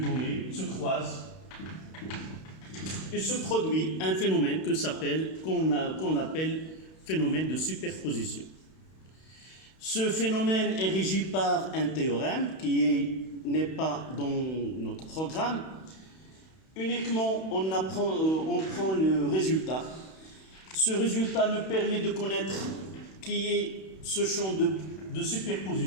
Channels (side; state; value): right; late; 31 ms